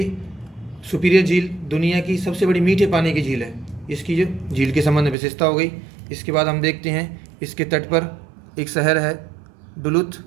सुपीरियर झील दुनिया की सबसे बड़ी मीठे पानी की झील है। इसकी जो झील के संबंध में विशेषता हो गई। इसके बाद हम देखते हैं, इसके तट पर एक शहर है डुलुथ।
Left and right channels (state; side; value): drops out; left; at 5.2 s